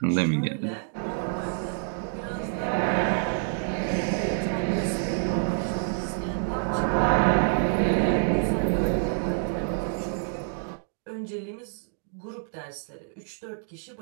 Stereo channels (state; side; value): silent; left; digital silence